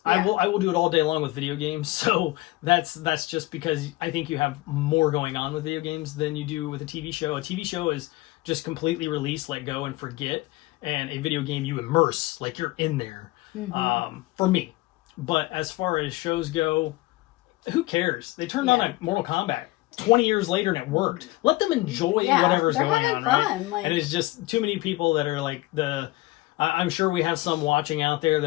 Yeah. I will do it all day long with video games. So that's just because I think you have more going on with video games than you do with a TV show. A TV show is just completely release, let go, and forget. And a video game, you immerse, like you're in there. For me. But as far as shows go, who cares? They turned on a Mortal Kombat 20 years later and it worked. Let them enjoy whatever's going on. Fun. Right? And it's just too many people that are like I'm sure we have some watching out there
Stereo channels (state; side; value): quieter; right; 19.6 dB